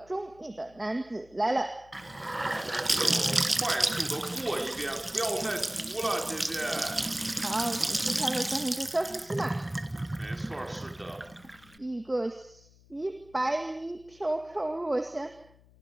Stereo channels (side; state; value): left; noise; hum, 26 dB below the sound